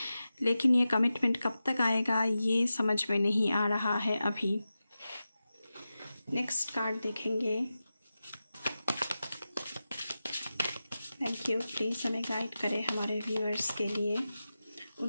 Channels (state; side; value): inverted; both; correlation -0.93